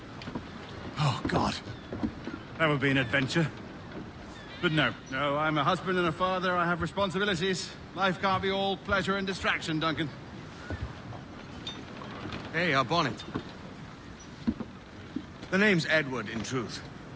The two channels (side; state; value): both; identical; correlation 1.00